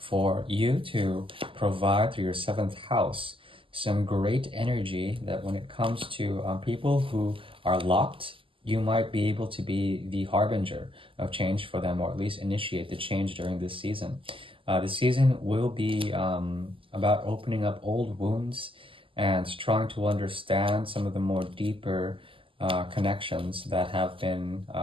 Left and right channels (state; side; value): late; left; 0.25 ms